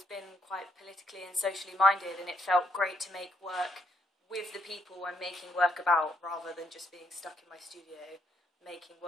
been quite politically and socially minded, and it felt great to make work with the people I'm making work about rather than just being stuck in my studio making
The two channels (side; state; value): both; normal; correlation 0.75